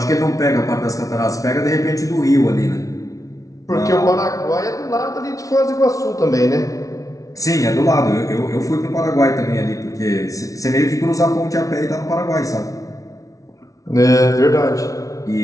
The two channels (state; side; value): late; right; 0.17 ms